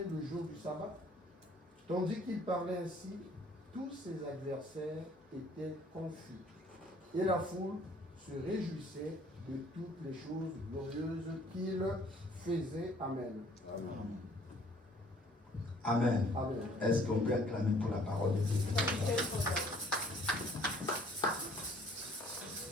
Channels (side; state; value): both; normal; correlation 0.58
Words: le jour du sabbat? Tandis qu'il parlait ainsi, tous ses adversaires étaient confus. Et la foule se réjouissait de toutes les choses glorieuses qu'il faisait. Amen. Amen. Amen. Est-ce qu'on peut acclamer pour la parole de Dieu?